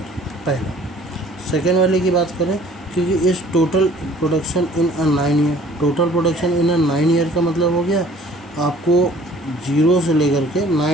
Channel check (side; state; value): both; normal; correlation 0.53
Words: पहला। सेकेंड वाले की बात करें, क्योंकि इस total production in a 9 year, total production in a 9 year का मतलब हो गया आपको 0 से लेकर के